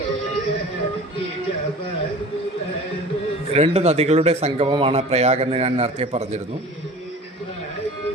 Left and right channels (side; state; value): both; normal; correlation 0.41